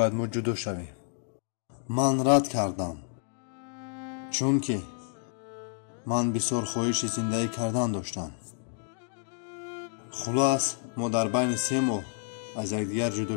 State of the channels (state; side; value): silent; right; 58 dB below the other